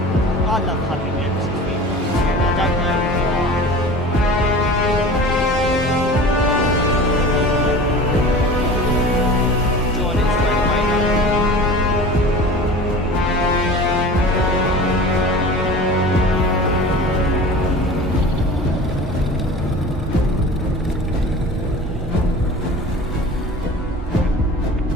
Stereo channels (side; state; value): both; normal; correlation 0.38